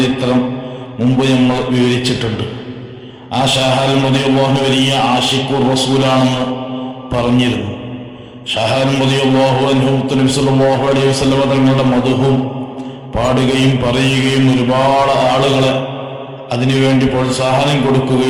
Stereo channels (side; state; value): both; identical; correlation 1.00